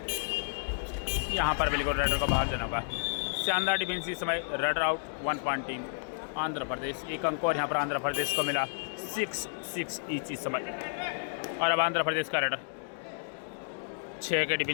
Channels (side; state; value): right; silent; digital silence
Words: यहाँ पर बिल्कुल रेडर को बाहर जाना होगा। शानदार डिफेंस इस समय। Raid out 1 point team Andhra Pradesh, एक अंक और यहाँ पर आंध्र प्रदेश को मिला 6-6 ईच इस समय। और अब आंध्र प्रदेश का रेडर 6 के